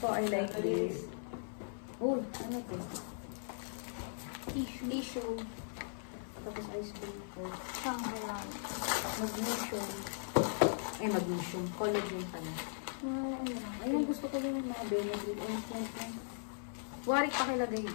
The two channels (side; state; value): right; silent; 52 dB below the other